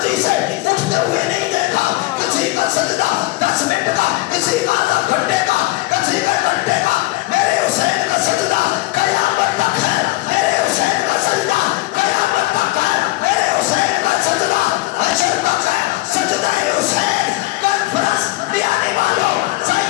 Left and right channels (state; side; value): quieter; right; 20.0 dB